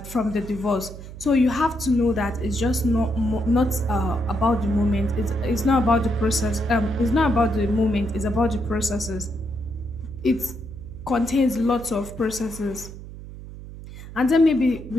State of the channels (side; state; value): right; noise; hum, 13 dB below the sound